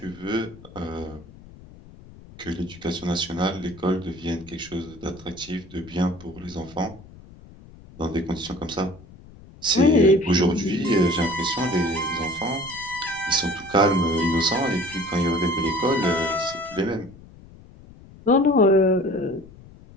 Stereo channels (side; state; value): left; noise; rumble, 21 dB below the sound